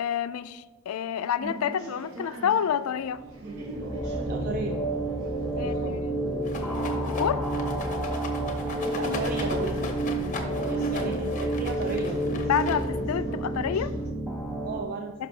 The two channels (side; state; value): both; normal; correlation 0.22